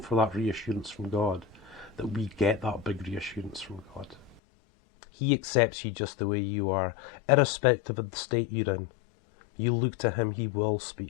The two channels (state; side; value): drops out; right; at 4.4 s